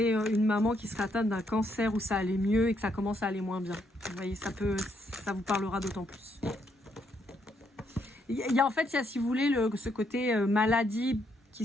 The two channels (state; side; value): normal; both; correlation 0.75